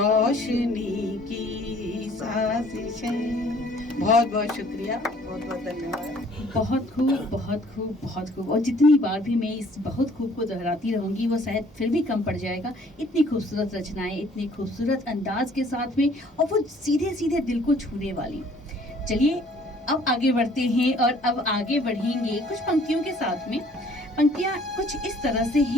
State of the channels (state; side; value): normal; both; correlation 0.57